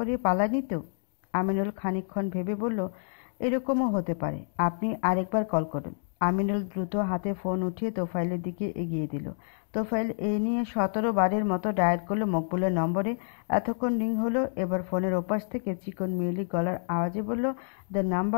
পালায়নি তো? আমিনুল খানিকক্ষণ ভেবে বলল, এরকমও হতে পারে, আপনি আরেকবার কল করুন। আমিনুল দ্রুত হাতে ফোন উঠিয়ে তোফায়েলের দিকে এগিয়ে দিল। তোফায়েল এই নিয়ে 17 বারের মতো ডায়াল করলো মকবুলের নম্বরে। এতক্ষণ রিং হলো। এবার ফোনের ওপাশ থেকে চিকন মিলি গলার আওয়াজে বলল, the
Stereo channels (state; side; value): silent; right; digital silence